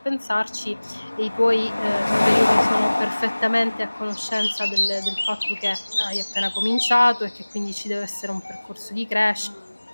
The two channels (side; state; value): both; inverted; correlation -1.00